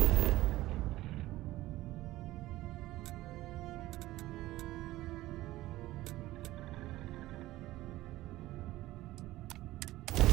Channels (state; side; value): quieter; left; 16.8 dB